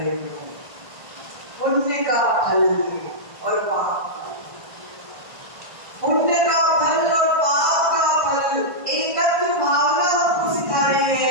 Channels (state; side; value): late; left; 1.5 ms